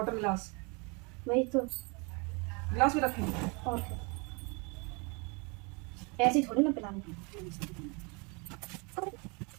गिलास, वही तो। गिलास भी रखेंगे। और क्या, ऐसे ही थोड़ी ना पिलाने।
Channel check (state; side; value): quieter; left; 31.3 dB